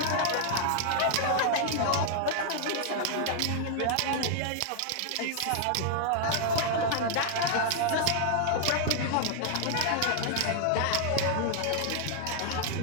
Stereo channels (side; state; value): both; different; correlation 0.00